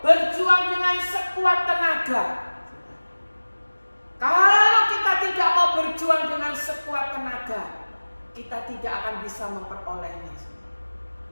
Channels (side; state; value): both; inverted; correlation -1.00